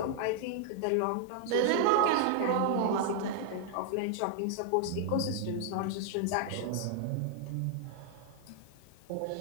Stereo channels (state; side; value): different; both; correlation 0.00